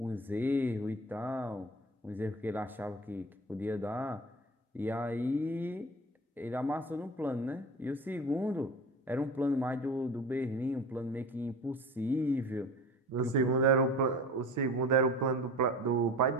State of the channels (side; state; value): both; normal; correlation 0.36